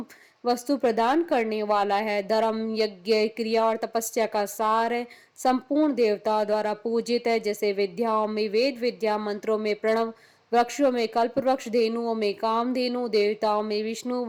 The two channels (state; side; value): identical; both; correlation 1.00